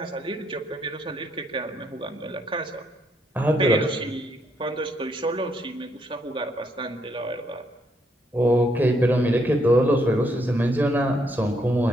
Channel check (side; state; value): both; normal; correlation 0.74